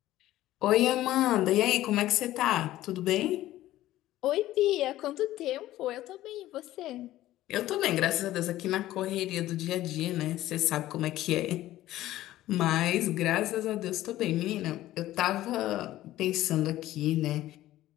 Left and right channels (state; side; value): quieter; right; 14.9 dB